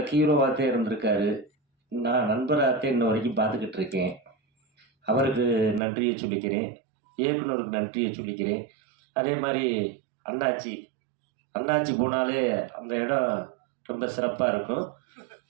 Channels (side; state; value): left; drops out; at 5.8 s